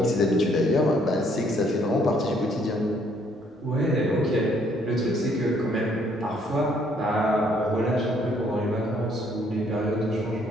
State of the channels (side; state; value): both; normal; correlation 0.66